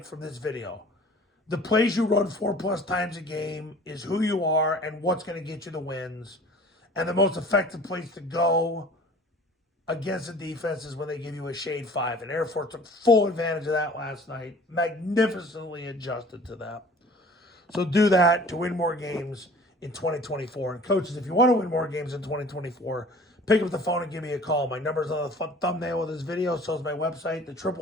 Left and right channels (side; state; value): both; normal; correlation 0.47